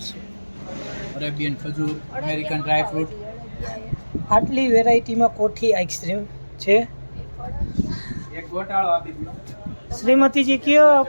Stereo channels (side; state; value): both; inverted; correlation -1.00